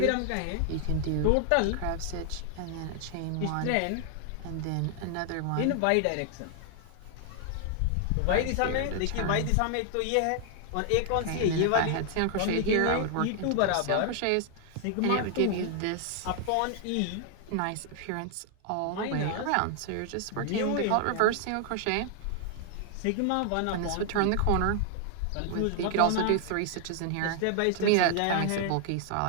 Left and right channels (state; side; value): different; both; correlation 0.00